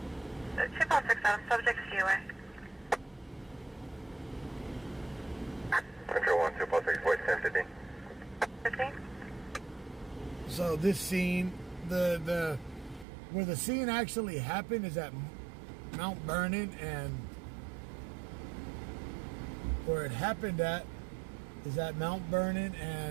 Chip out 6 out, subject COA. Control 1, 246, voice 1050. 15? So this scene, where the scene actually happened is at Mount Vernon, and where it happened at is at Mount Vernon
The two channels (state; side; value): drops out; left; at 13.1 s